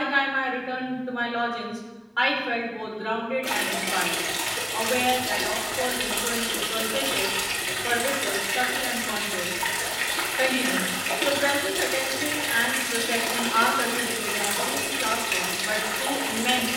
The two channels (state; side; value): identical; both; correlation 1.00